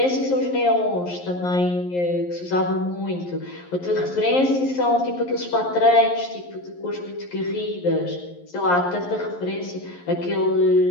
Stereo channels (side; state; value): right; late; 11 ms